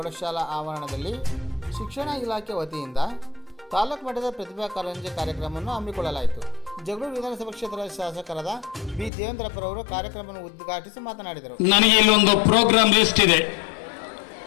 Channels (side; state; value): right; drops out; at 9.1 s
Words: ಆವರಣದಲ್ಲಿ ಶಿಕ್ಷಣ ಇಲಾಖೆ ವತಿಯಿಂದ ತಾಲೂಕು ಮಟ್ಟದ ಪ್ರತಿಭಾ ಕಾರಂಜಿ ಕಾರ್ಯಕ್ರಮವನ್ನು ಹಮ್ಮಿಕೊಳ್ಳಲಾಯಿತು. ಜಗಳೂರು ವಿಧಾನಸಭಾ ಕ್ಷೇತ್ರದ ಶಾಸಕರಾದ ಬಿ ದೇವೇಂದ್ರಪ್ಪರವರು ಕಾರ್ಯಕ್ರಮವನ್ನು ಉದ್ಘಾಟಿಸಿ ಮಾತನಾಡಿದರು. ನನಗೆ ಇಲ್ಲೊಂದು ಪ್ರೋಗ್ರಾಮ್ ಲಿಸ್ಟ್ ಇದೆ.